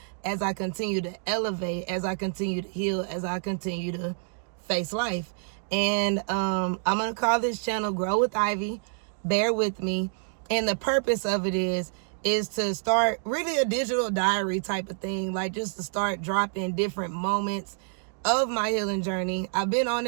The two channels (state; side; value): silent; left; digital silence